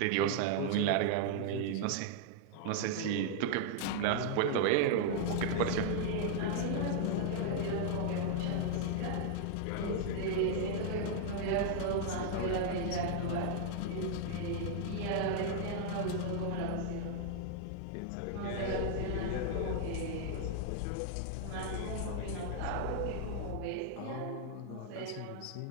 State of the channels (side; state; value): both; different; correlation -0.01